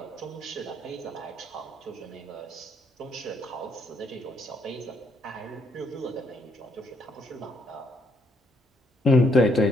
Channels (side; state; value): both; normal; correlation 0.71